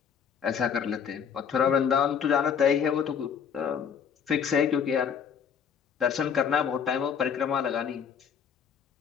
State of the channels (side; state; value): right; quieter; 7.3 dB